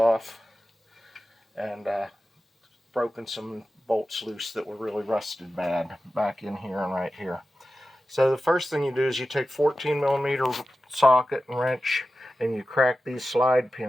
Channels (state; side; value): normal; both; correlation 0.93